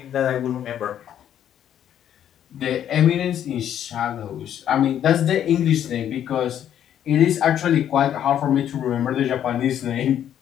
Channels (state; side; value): quieter; right; 10.2 dB